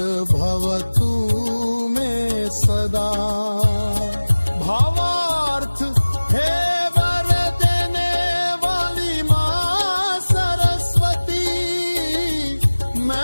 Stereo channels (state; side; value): inverted; both; correlation -1.00